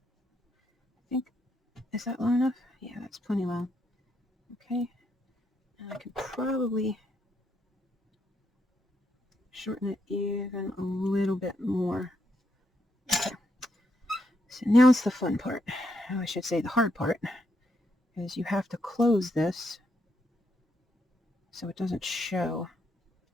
I think, is that long enough? Yeah, that's plenty long. Okay, and I can probably shorten it even a little bit more. Okay. So now it's the fun part. Oh, I should say the hard part, is you have to close this so it doesn't show.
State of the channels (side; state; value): both; normal; correlation 0.78